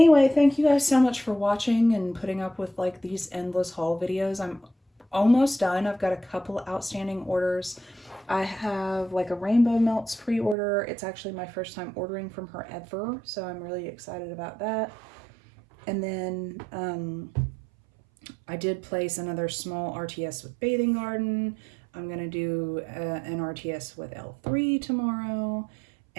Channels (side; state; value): left; drops out; at 10.6 s